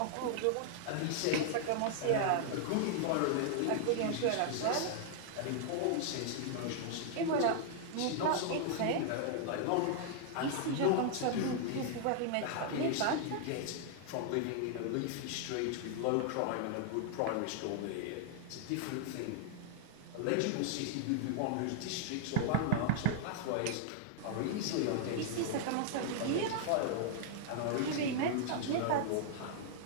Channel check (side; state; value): both; different; correlation -0.01